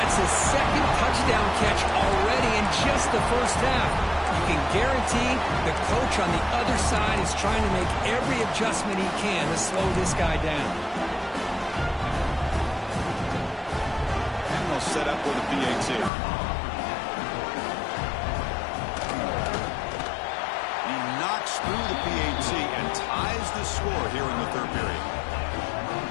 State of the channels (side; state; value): right; drops out; at 16.1 s